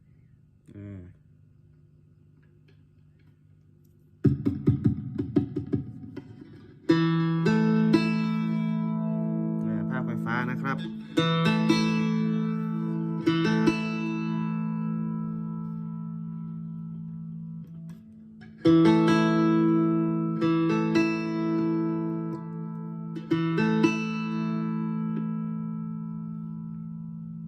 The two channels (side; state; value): both; identical; correlation 1.00